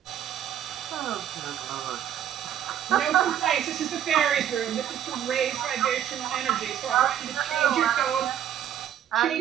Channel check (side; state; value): left; quieter; 10.4 dB